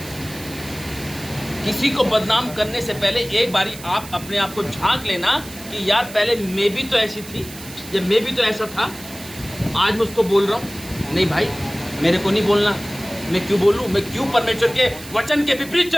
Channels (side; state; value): right; noise; hiss, 15 dB below the sound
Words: किसी को बदनाम करने से पहले एक बारी आप अपने आप को झांक लेना कि यार पहले मैं भी तो ऐसी थी, या मैं भी तो ऐसा था, आज मैं उसको बोल रहा हूँ। नहीं भाई, मेरे को नहीं बोलना। मैं क्यों बोलूँ? मैं क्यों परमेश्वर के वचन के विपरीत